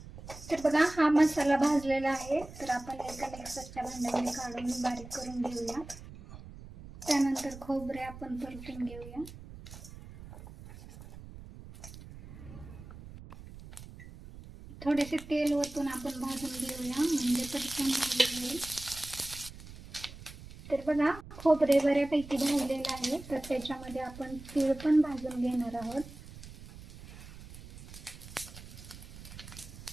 तर बघा हा मसाला भाजलेला आहे. तर आपण एका मिक्सरच्या भांड्यामध्ये काढून बारीक करून घेऊया. त्यानंतर खोबरे आपण परतून घेऊया. थोडेसे तेल ओतून आपण भाजून घेऊया म्हणजे पटकन भाजून येईल. तर बघा खोबरे बऱ्यापैकी भाजलेलं आहे. तर त्याच्यामध्ये आपण तीळ पण भाजून घेणार आहोत.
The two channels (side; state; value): right; noise; rumble, 15 dB below the sound